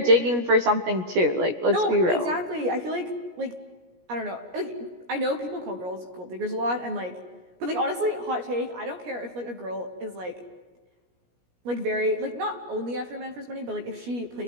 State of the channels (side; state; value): left; late; 17 ms